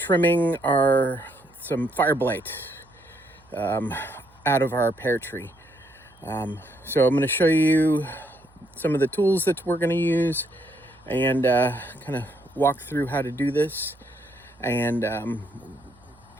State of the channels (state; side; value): noise; right; hum, 30 dB below the sound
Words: some fire blight out of our pear tree. So I'm going to show you some of the tools that we're going to use and kind of walk through how to do this and